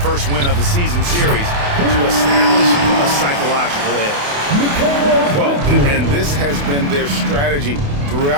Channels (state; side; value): late; left; 28 ms